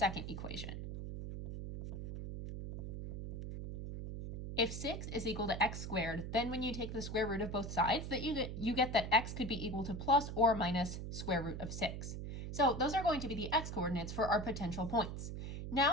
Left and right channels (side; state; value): right; noise; hum, 6 dB below the sound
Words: equation. If 6 is equal to x squared, then when you take the square root of both sides, that you get that x could be equal to plus or minus square root of 6. So those are going to be the x coordinates for our potential points.